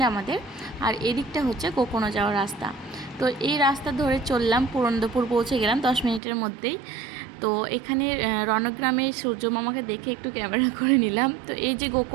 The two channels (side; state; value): left; drops out; at 6.2 s